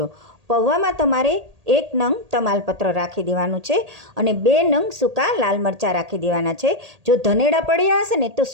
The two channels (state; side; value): late; left; 1.8 ms